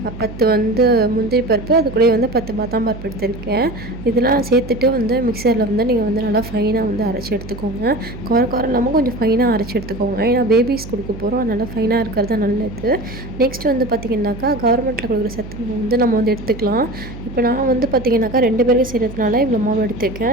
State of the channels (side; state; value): right; noise; hum, 13 dB below the sound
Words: 10 முந்திரி பருப்பு, அது கூட வந்து 10 பாதாம் பருப்பு எடுத்திருக்கேன். இதெல்லாம் சேர்த்துட்டு வந்து மிக்சரில் வந்து நீங்கள் வந்து நல்லா ஃபைனாக வந்து அரைச்சி எடுத்துக்கோங்க. குறை இல்லாமல் கொஞ்சம் ஃபைனாக அரைச்சி எடுத்துக்கோங்க. ஏன்னா பேபிஸ் கொடுக்க போகிறோம், அதனால் ஃபைனாக இருக்கிறது தான் நல்லது. நெக்ஸ்ட் வந்து பார்த்திங்கனாக்கா கவர்மெண்ட்டில் கொடுக்குற சத்து மாவு வந்து நம்ம வந்து எடுத்துக்கலாம். இப்போ நான் வந்து பார்த்திங்கனாக்கா 2 பேருக்கு செய்கிறதுனால இவ்வளோ மாவு